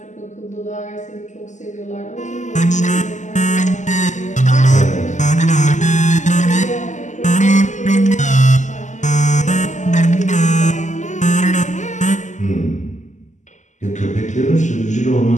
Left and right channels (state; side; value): late; right; 0.35 ms